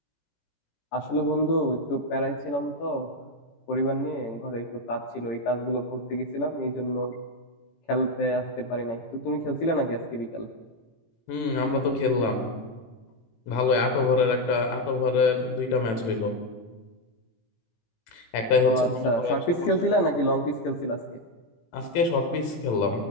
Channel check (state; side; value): late; right; 18 ms